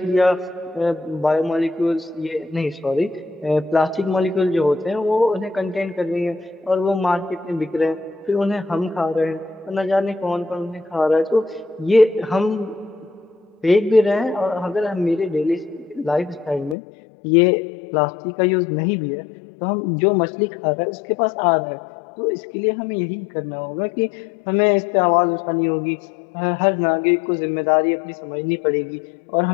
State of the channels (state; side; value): drops out; right; at 16.8 s